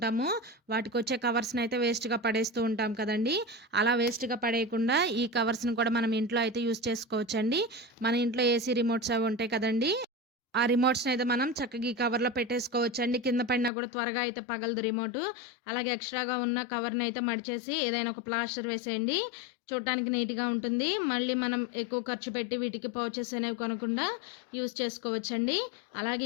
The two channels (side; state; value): right; drops out; at 13.7 s